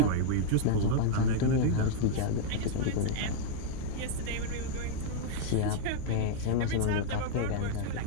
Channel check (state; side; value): different; both; correlation -0.01